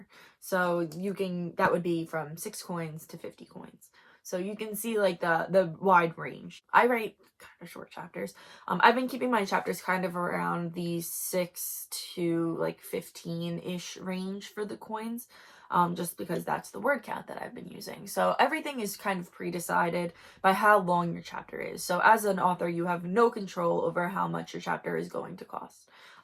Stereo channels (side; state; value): both; identical; correlation 1.00